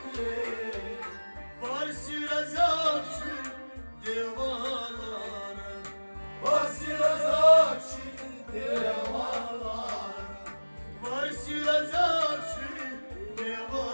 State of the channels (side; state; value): both; inverted; correlation -1.00